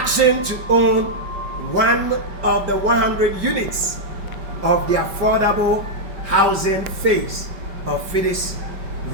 to own one of the 100 units of the affordable housing phase of Fides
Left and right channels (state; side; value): late; left; 5.2 ms